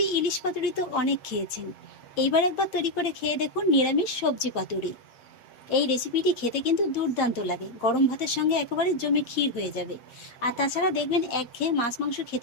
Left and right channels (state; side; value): late; right; 8.4 ms